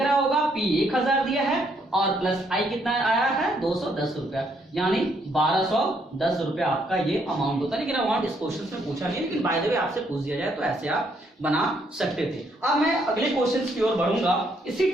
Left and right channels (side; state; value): both; normal; correlation 0.71